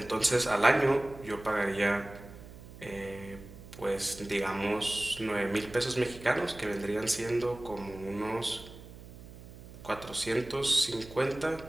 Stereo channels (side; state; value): right; noise; hum, 17 dB below the sound